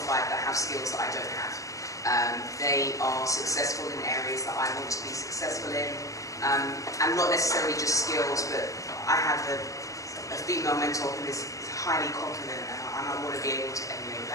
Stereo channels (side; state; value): right; late; 0.16 ms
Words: that have skills that I don't have. They are successful in areas that I want to be successful in, and not necessarily just skills, but I have a female mentor who is highly confident, and I want to be able to emulate